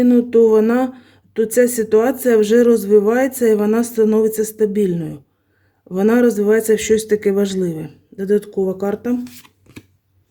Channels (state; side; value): identical; both; correlation 1.00